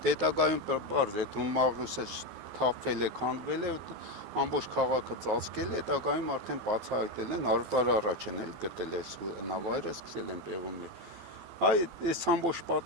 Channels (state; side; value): late; left; 12 ms